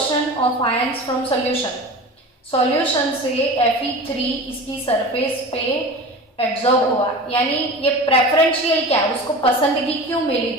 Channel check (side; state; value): both; normal; correlation 0.34